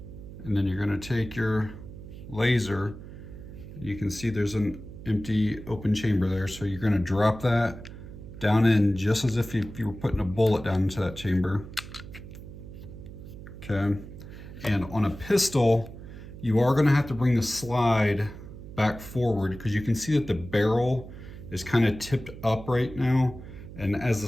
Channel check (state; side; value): noise; right; hum, 14 dB below the sound